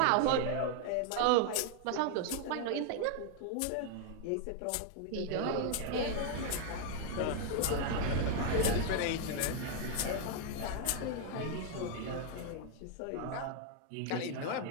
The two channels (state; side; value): different; both; correlation 0.00